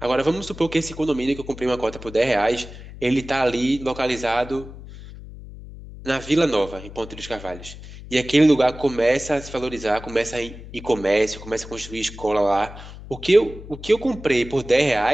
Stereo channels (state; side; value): noise; left; hum, 15 dB below the sound